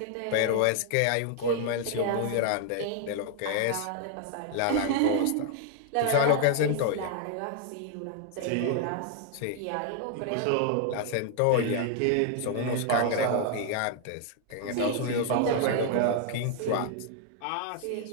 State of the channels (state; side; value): different; both; correlation 0.00